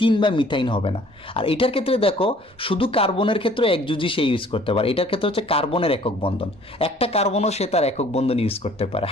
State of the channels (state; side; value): normal; both; correlation 0.55